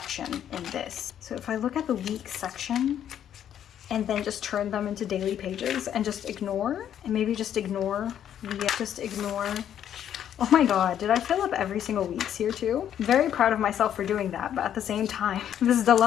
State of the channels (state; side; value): quieter; right; 10.0 dB